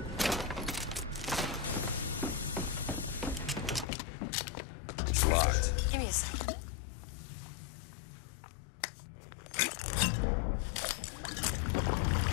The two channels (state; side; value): drops out; right; at 3.9 s